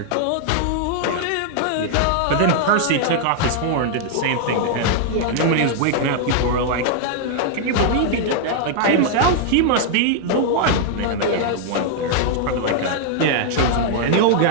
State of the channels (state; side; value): different; both; correlation -0.01